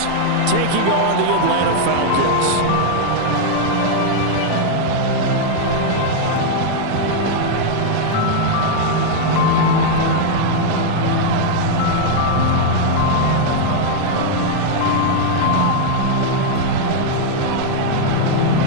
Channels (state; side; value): different; both; correlation 0.00